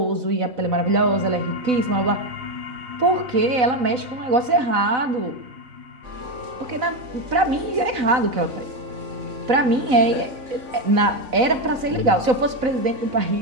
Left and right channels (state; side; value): late; left; 4.0 ms